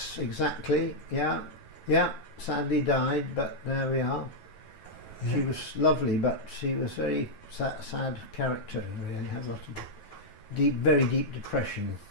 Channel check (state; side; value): late; right; 9.3 ms